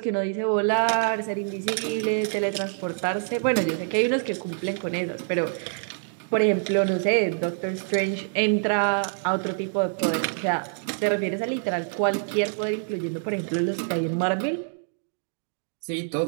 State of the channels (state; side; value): silent; left; digital silence